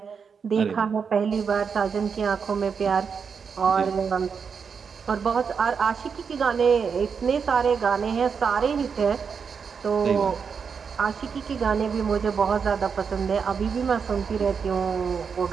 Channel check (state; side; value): quieter; left; 6.1 dB